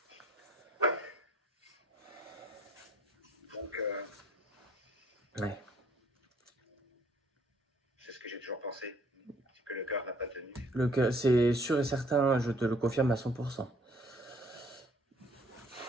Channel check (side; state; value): both; normal; correlation 0.60